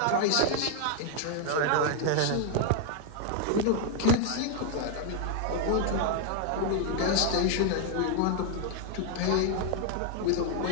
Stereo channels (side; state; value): both; different; correlation 0.00